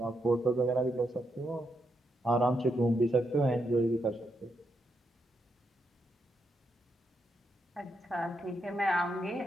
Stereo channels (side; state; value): both; normal; correlation 0.81